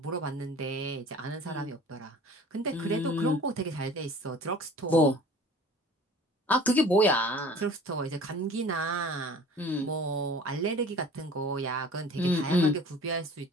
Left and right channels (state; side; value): normal; both; correlation 0.45